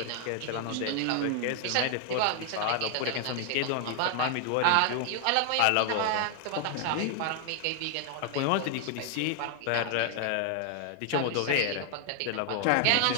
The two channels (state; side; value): different; both; correlation 0.00